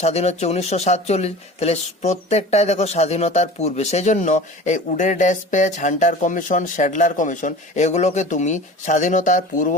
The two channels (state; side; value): normal; both; correlation 0.38